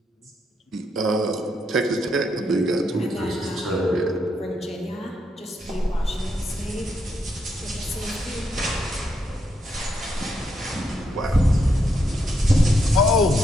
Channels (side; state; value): both; normal; correlation 0.79